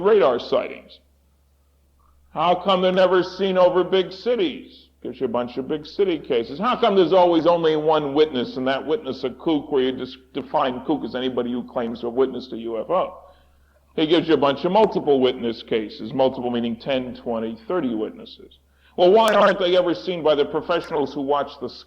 radar sightings. How come they're never seen over big cities? Gives you a bunch of big city cases. How come there's always only one witness, and that witness a kook, where you just define kook as anybody who claims to have witnessed a UFO? He gives you a bunch of multiple witness cases, multiple meaning 10, 20, 30 witnesses. Well, why aren't they ever seen by the professionals who watch the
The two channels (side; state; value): both; identical; correlation 1.00